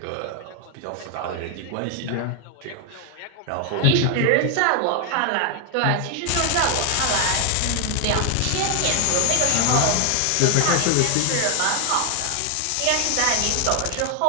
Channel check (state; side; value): different; both; correlation 0.01